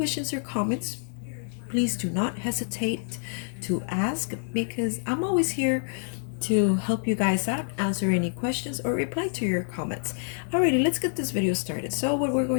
or comments, please do not hesitate to ask, because I'm always here to help you guys out, answer any questions, or reply to your comments. Alrighty, let's get this video started. So what we're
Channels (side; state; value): right; silent; digital silence